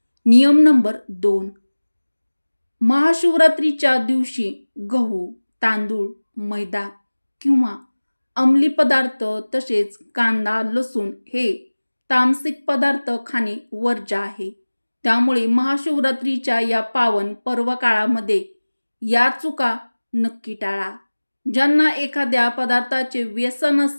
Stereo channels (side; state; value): both; inverted; correlation -1.00